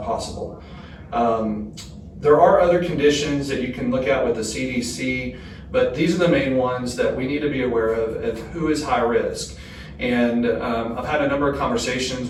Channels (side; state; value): both; identical; correlation 1.00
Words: possible. There are other conditions that you can look at with the CDC, but these are the main ones that we need to be aware of who is high risk. And I've had a number of conversations